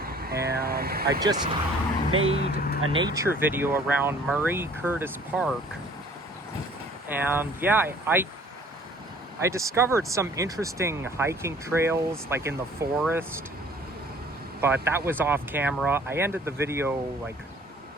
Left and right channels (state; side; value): normal; both; correlation 0.54